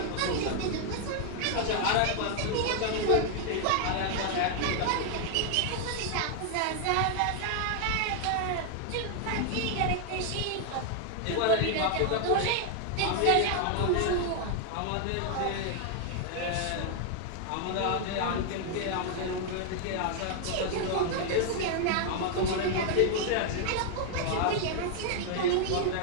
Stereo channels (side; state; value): both; different; correlation 0.00